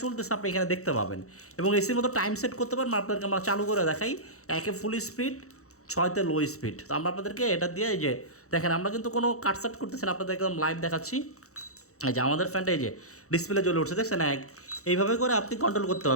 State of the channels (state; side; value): late; right; 0.64 ms